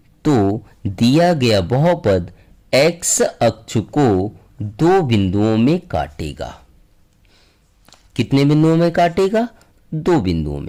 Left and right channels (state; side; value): identical; both; correlation 1.00